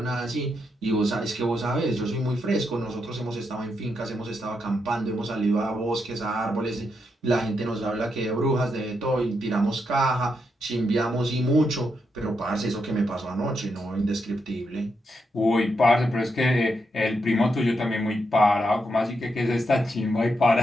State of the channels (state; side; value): normal; both; correlation 0.82